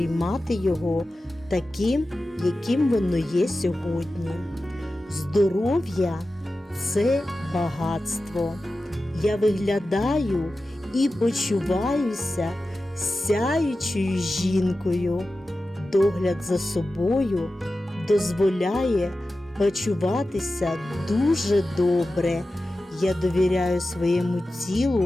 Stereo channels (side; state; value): both; normal; correlation 0.94